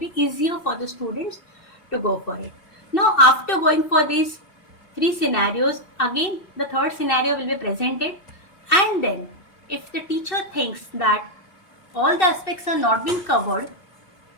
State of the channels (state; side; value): late; right; 2.6 ms